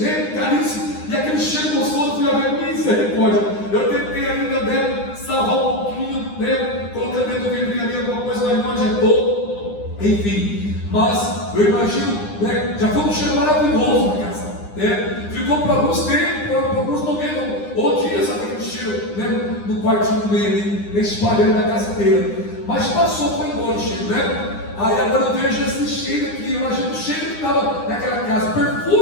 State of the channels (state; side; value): late; right; 9.8 ms